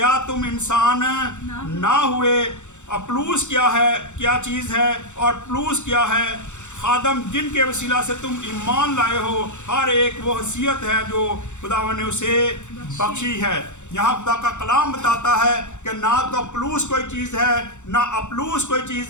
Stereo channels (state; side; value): late; right; 0.84 ms